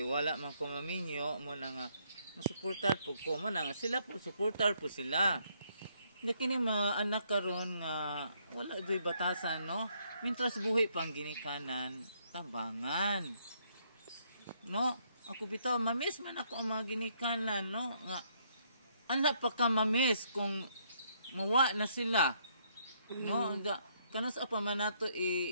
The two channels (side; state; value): both; inverted; correlation -0.70